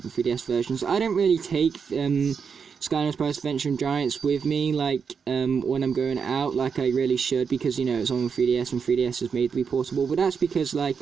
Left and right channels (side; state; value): left; quieter; 6.2 dB